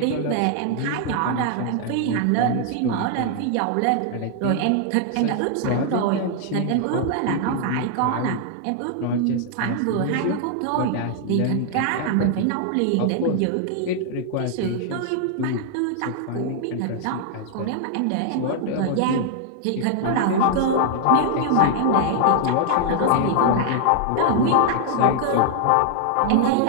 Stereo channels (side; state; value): both; different; correlation 0.00